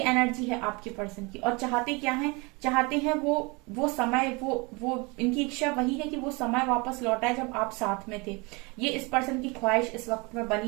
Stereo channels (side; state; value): left; quieter; 27.6 dB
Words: एनर्जी है आपके पर्सन की। और चाहते क्या है, चाहते हैं वो समय, वो इनकी इच्छा वही है कि वो समय वापस लौटाए जब आप साथ में थे। ये इस पर्सन की ख्वाहिश इस वक्त में